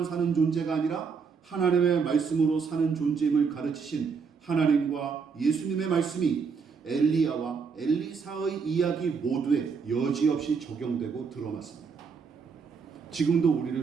사는 존재가 아니라 하나님의 말씀으로 사는 존재임을 가르치신 하나님과 예수님의 말씀이 엘리야와 엘리사의 이야기 모두에 여지없이 적용되고 들어맞습니다. 지금도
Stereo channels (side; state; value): left; quieter; 5.6 dB